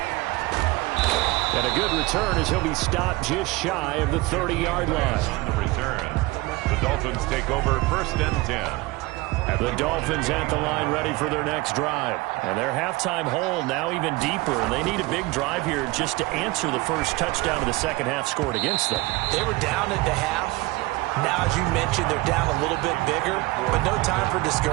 And a good return as he'll be stopped just shy of the 30-yard line. On the return, the Dolphins take over first and 10. The Dolphins at the line ready for their next drive. And their halftime hole now even deeper. And they need a big drive here just to answer the first touchdown of the second half scored against them. They were down at the half. Now, as you mentioned, they're down a little bit bigger, but no time for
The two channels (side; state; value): left; quieter; 21.6 dB